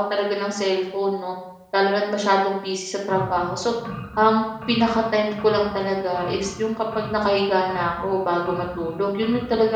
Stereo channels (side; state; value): both; identical; correlation 1.00